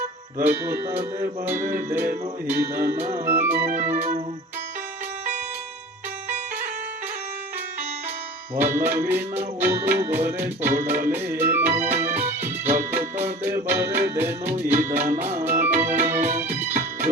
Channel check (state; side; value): normal; both; correlation 0.39